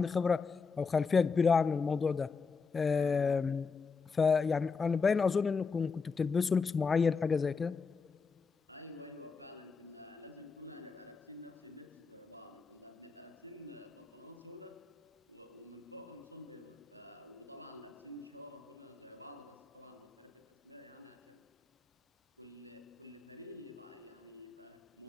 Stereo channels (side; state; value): right; quieter; 5.0 dB